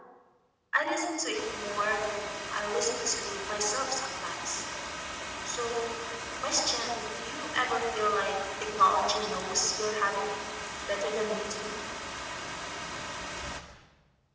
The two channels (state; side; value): identical; both; correlation 1.00